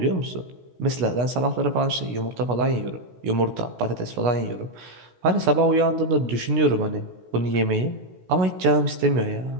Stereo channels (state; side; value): late; left; 16 ms